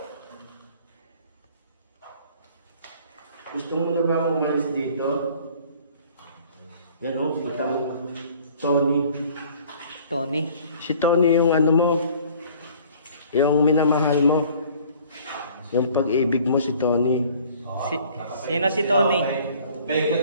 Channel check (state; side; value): inverted; both; correlation -0.53